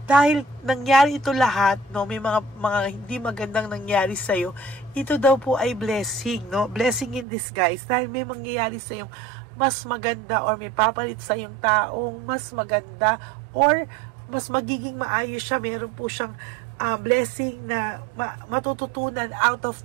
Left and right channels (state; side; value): drops out; left; at 7.2 s